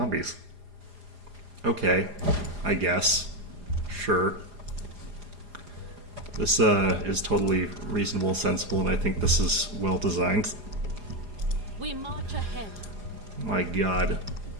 Okay, I guess. Sure. This is totally reasonable and sensible, and I think this is well designed. We march ahead. My god.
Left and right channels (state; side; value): late; left; 4.9 ms